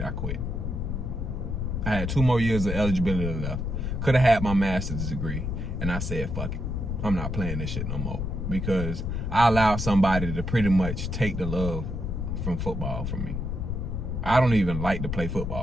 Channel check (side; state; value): left; noise; rumble, 3 dB below the sound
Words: I quit. I had 2 more years of eligibility left. Could have had my master's degree. And I said, fuck it. I'm not playing this shit no more. Because I allowed somebody to pretty much take the love from football from me. I don't even like to play